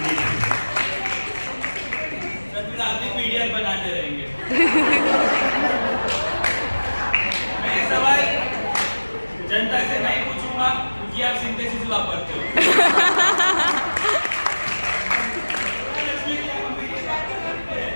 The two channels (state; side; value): inverted; both; correlation -1.00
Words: Sir फिर आप भी पीडीएफ बनाते रहेंगे. मैं ये सवाल जनता से नहीं पूछूंगा क्योंकि आप सिंथेसिस वापरते हो.